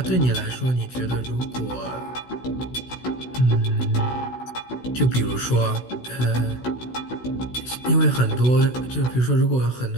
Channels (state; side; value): late; right; 16 ms